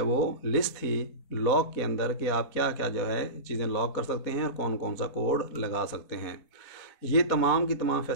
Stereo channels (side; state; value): right; late; 4.2 ms